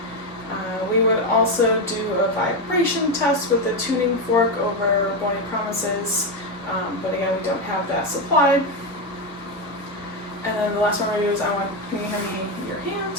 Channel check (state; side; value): normal; both; correlation 0.10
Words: We would also do a vibration test with a tuning fork over bony promises, but again, we don't have that supplied. And then the last one we're going to do is can you hand me your hand?